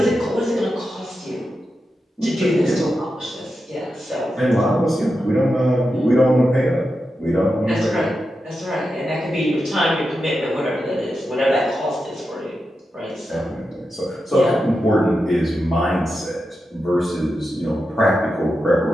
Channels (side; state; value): both; normal; correlation 0.89